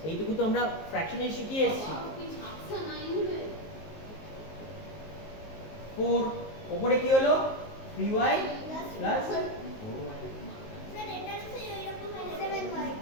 এইটুকু তো আমরা ফ্র্যাকশনে শিখিয়ে এসেছি 4 উপরে কি হলো 3y প্লাস 4y স্যার এটা তো এরকম 7y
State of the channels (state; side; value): late; right; 19 ms